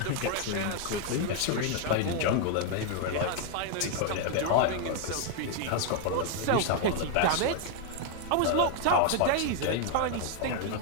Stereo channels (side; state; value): both; different; correlation 0.00